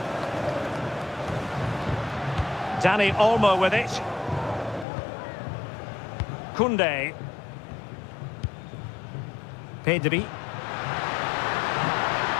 Dani Olmo with it. Koundé. Pedri.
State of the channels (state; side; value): drops out; right; at 4.9 s